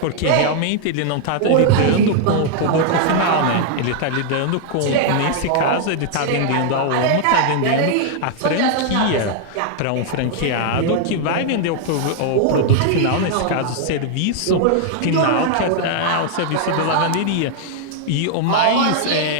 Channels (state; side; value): different; both; correlation 0.00